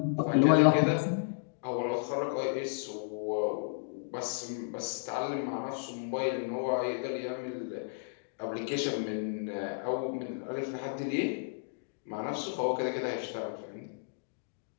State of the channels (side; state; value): right; silent; digital silence